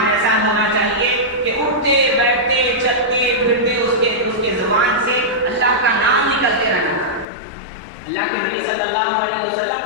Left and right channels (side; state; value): right; drops out; at 7.2 s